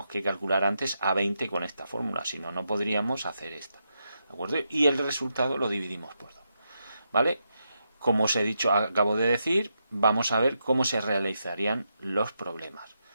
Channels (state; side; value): inverted; both; correlation -0.84